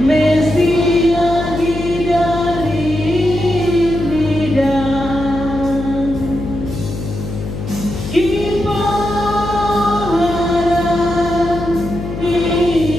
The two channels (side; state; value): left; noise; hum, 7 dB below the sound